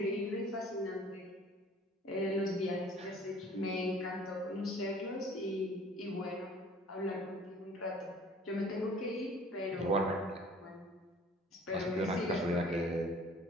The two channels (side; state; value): both; normal; correlation 0.51